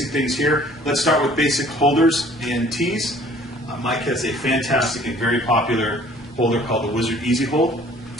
things here. Let's start with basic holders and tees. Mike has a fantastic and very popular holder called the Wizard Easy Hold.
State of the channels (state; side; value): normal; both; correlation 0.54